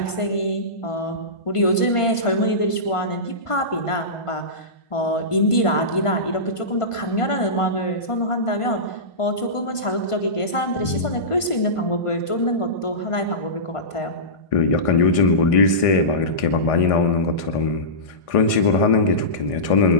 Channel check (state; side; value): late; right; 1.5 ms